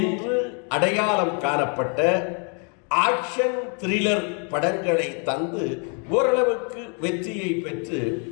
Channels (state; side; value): quieter; right; 39.0 dB